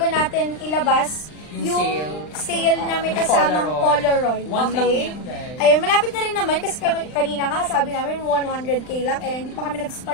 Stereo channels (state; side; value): late; right; 39 ms